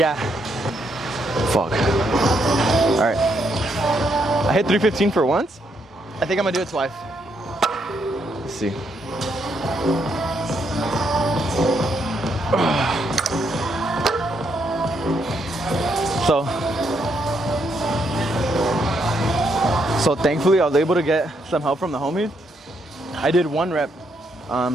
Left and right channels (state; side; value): normal; both; correlation 0.76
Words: Fuck. All right. I hit 315 for once. I think I'm gonna do it twice. Let's see. So thankfully I was able to get some help from the homies. I did 1 rep.